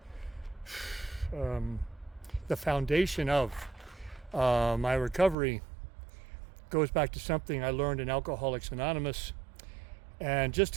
the foundation of my recovery goes back to something I learned in Alcoholics Anonymous. And just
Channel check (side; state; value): left; drops out; at 5.4 s